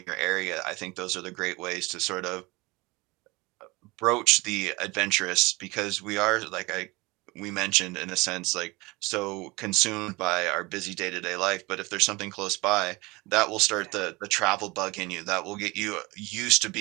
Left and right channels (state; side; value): quieter; left; 23.6 dB